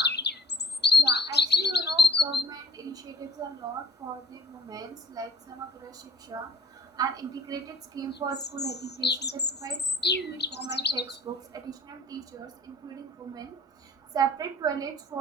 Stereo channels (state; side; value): normal; both; correlation 0.54